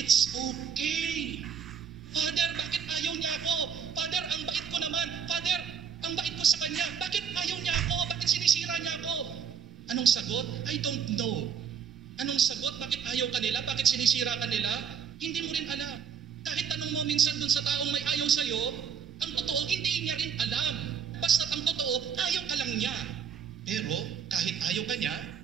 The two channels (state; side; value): quieter; left; 7.3 dB